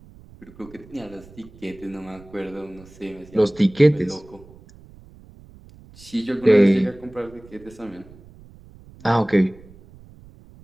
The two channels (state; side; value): noise; right; rumble, 22 dB below the sound